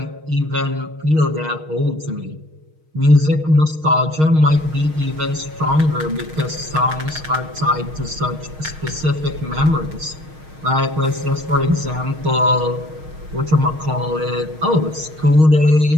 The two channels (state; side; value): late; left; 6.4 ms